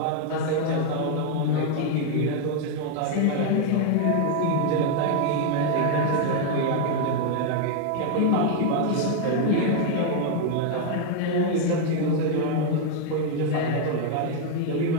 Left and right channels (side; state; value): both; different; correlation 0.00